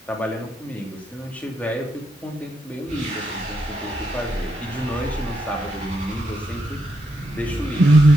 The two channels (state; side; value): normal; both; correlation 0.81